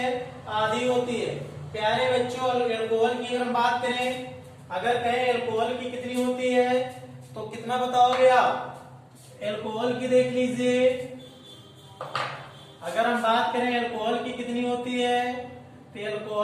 आधी होती है। प्यारे बच्चों, एल्कोहल की अगर हम बात करें, अगर कहें एल्कोहल की कितनी होती है तो कितना बताओगे आप? एल्कोहल की देख लीजिए। अगर हम बात करें एल्कोहल की कितनी होती है तो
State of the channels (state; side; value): identical; both; correlation 1.00